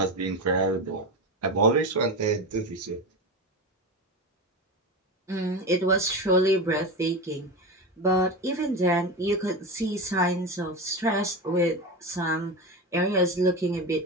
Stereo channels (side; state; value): both; normal; correlation 0.21